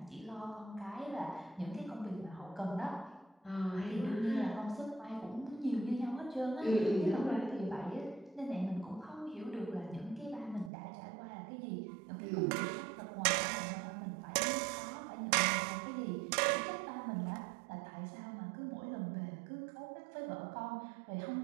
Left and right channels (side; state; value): left; drops out; at 10.7 s